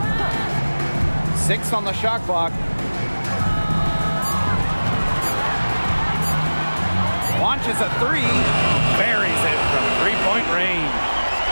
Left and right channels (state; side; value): inverted; both; correlation -1.00